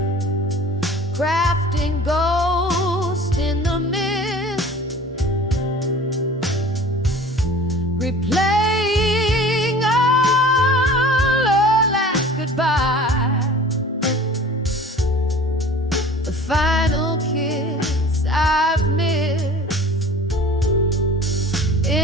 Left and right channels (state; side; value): normal; both; correlation 0.44